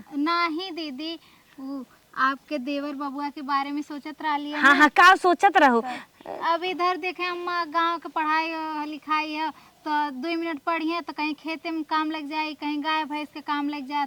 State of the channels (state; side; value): identical; both; correlation 1.00